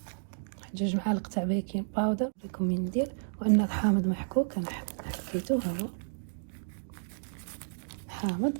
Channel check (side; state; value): left; silent; digital silence